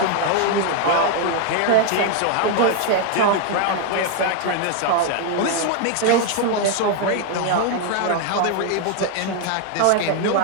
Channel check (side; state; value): both; different; correlation 0.00